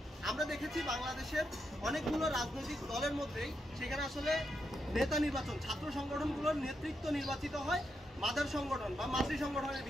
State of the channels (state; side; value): normal; both; correlation 0.83